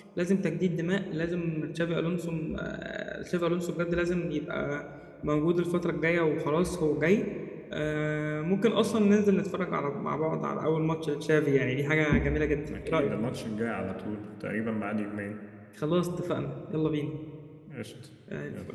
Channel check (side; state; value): both; identical; correlation 1.00